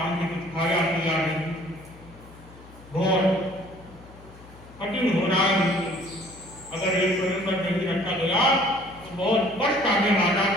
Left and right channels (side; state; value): left; noise; hum, 21 dB below the sound